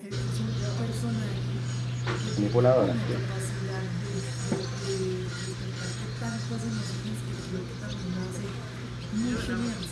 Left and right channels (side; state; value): both; identical; correlation 1.00